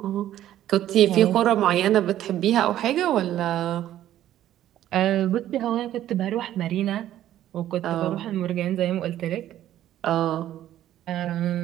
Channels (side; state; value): left; quieter; 12.5 dB